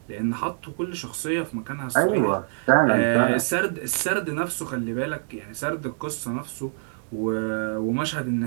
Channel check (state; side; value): silent; left; 61 dB below the other